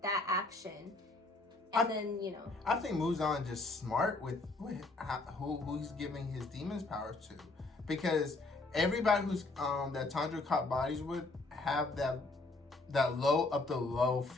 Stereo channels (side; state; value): right; quieter; 3.2 dB